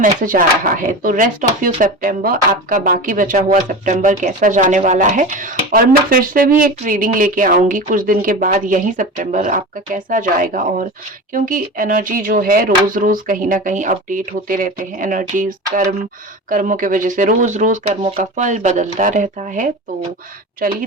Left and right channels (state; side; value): normal; both; correlation 0.29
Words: आ रहा है। तो रेस्ट ऑफ यू सितंबर, आपका बाकी बचा हुआ सितंबर कैसा जाने वाला है। और मैं फिर से भी एक रीडिंग लेके आऊंगी कुछ दिन के बाद, यही सितंबर आपका कैसा जाएगा। और क्योंकि एनर्जी जो है रोज रोज कहीं ना कहीं अपडेट होते रहते हैं, एनर्जीज कर्मों की वजह से रोज रोज कर्मों का फल बदलता रहता है। तो चलिए